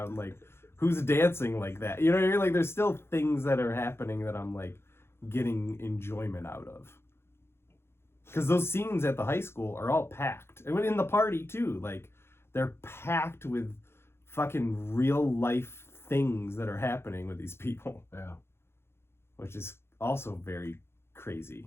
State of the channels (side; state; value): right; late; 0.12 ms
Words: Like, who's dancing like that? You know what I mean? Like, there's still things that are happening that I'm like getting enjoyment out of. Because those scenes at the high school are all packed. And in the party too, like, they're packed with fucking real life things that are happening with these people. Yeah. Which is also very